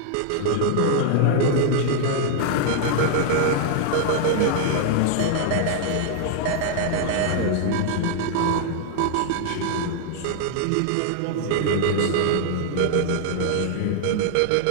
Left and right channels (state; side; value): different; both; correlation 0.00